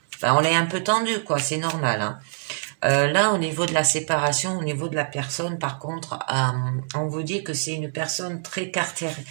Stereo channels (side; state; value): left; silent; digital silence